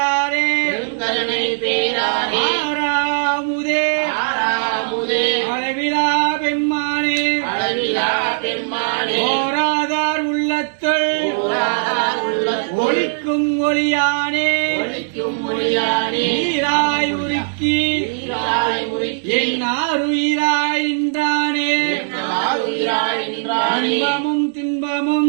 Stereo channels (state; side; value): silent; left; digital silence